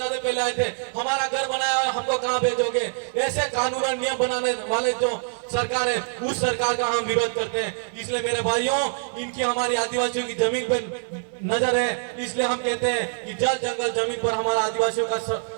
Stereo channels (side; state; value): left; silent; 58 dB below the other